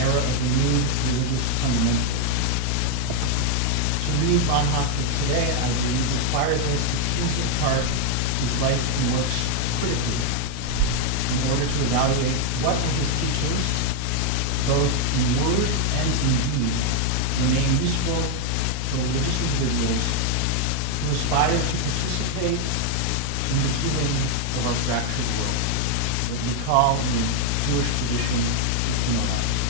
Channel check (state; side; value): different; both; correlation 0.01